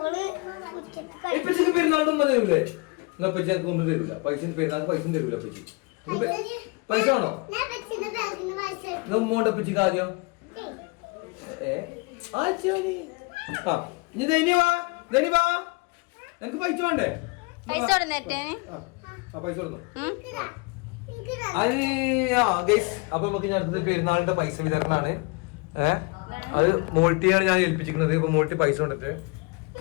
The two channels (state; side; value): quieter; right; 28.6 dB